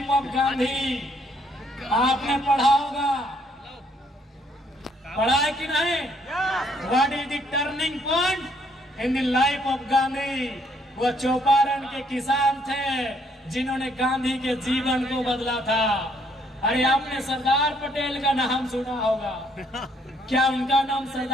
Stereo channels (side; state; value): both; normal; correlation 0.67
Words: of Gandhi? आपने पढ़ा होगा, पढ़ा है कि नहीं? What is the turning point in the life of Gandhi? वो चौपारण के किसान थे जिन्होंने गांधी के जीवन को बदला था। अरे आपने सरदार पटेल का नाम सुना होगा, क्या उनका नाम